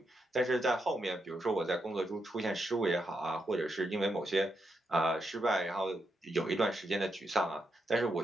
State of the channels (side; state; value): both; normal; correlation 0.82